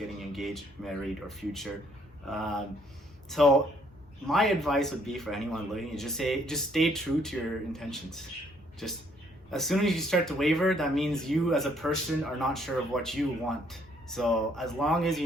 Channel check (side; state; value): both; normal; correlation 0.66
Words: engaged, married, or future. So my advice would be for anyone looking is just stay true to your intentions. Just as soon as you start to waver, that means you as a person are not sure of what you want. So as long as